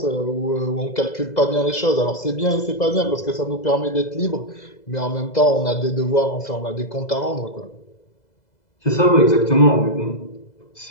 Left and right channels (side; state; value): right; late; 2.0 ms